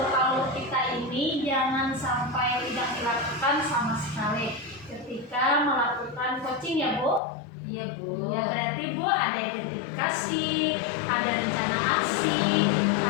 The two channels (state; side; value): drops out; right; at 7.2 s